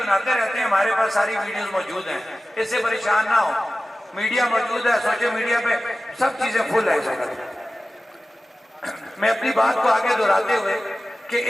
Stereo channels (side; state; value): both; normal; correlation 0.96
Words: रहते हैं, हमारे पास सारी वीडियोस मौजूद हैं, इससे परेशान ना हो। मीडिया मौजूद है, सोशल मीडिया पे सब चीजें फुल है। मैं अपनी बात को आगे दोहराते हुए कि